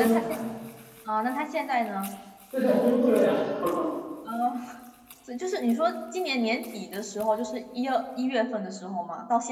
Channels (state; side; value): identical; both; correlation 1.00